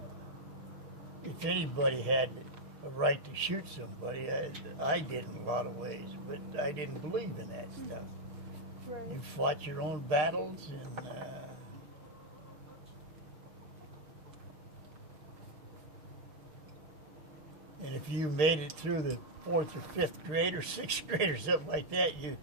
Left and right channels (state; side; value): late; left; 6.6 ms